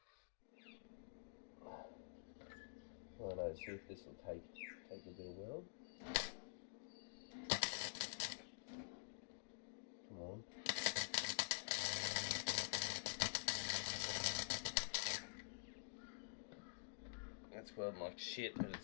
Righto, see if this will take a bit of weld. Come on. That's welding like shit, but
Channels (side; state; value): right; silent; digital silence